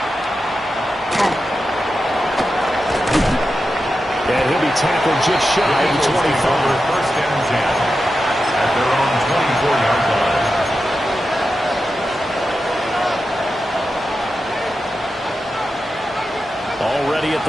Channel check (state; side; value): normal; both; correlation 0.90